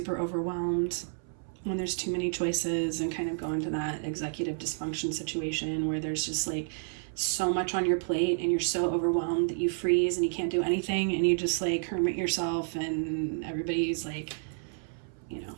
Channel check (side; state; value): left; silent; 58 dB below the other